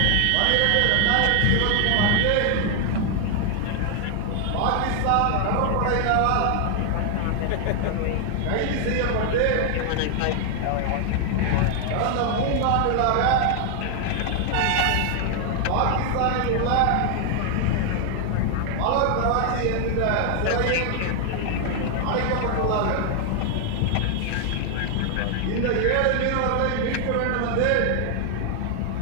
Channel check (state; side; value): different; both; correlation 0.00